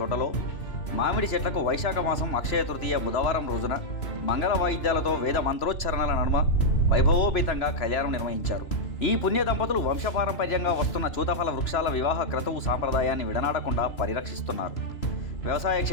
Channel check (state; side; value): late; right; 3.0 ms